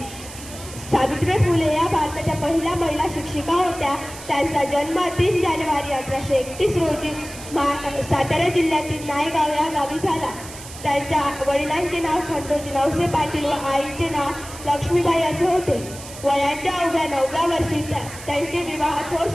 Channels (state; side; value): noise; right; hiss, 14 dB below the sound